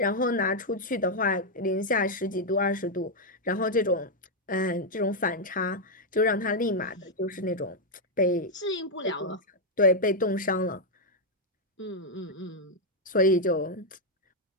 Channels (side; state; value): both; normal; correlation -0.01